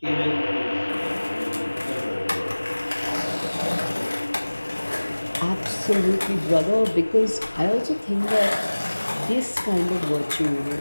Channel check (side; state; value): both; inverted; correlation -1.00